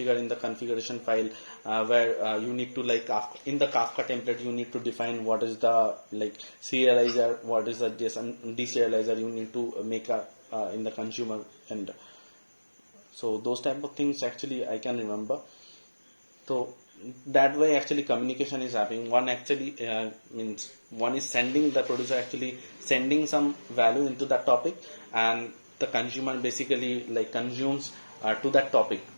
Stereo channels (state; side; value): inverted; both; correlation -1.00